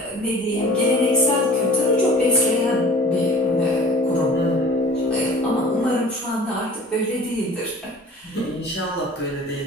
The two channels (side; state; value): both; normal; correlation 0.45